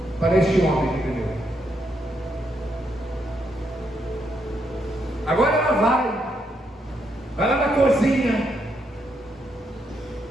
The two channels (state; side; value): normal; both; correlation 0.78